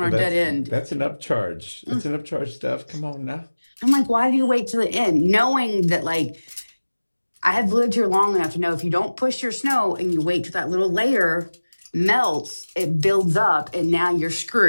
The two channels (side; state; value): both; inverted; correlation -1.00